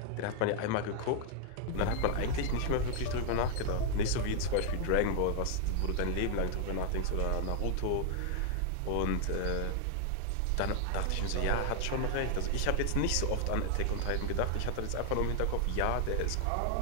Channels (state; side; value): different; both; correlation 0.00